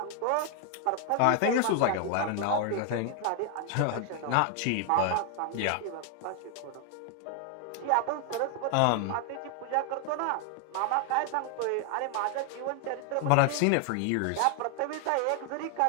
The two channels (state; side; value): different; both; correlation 0.00